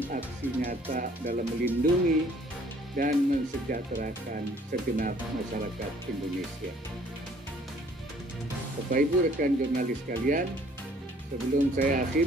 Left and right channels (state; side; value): normal; both; correlation 0.58